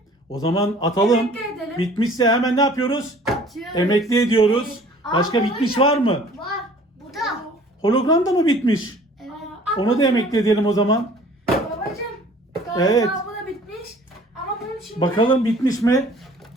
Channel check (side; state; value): both; normal; correlation 0.51